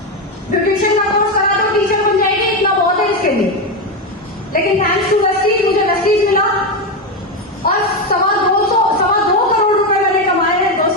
ब्यूटिशियन का कोर्स करा तो टीचर बन जाएगी, इतना बहुत है इसके लिए। लेकिन थैंक्स टू वेस्टीज मुझे वेस्टीज मिला, और 2.25 करोड़ रुपए मैंने कमाए हैं।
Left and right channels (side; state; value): both; normal; correlation 0.11